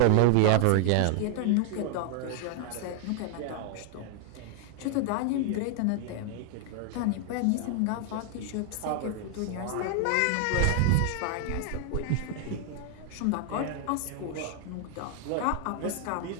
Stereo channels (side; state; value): both; different; correlation 0.00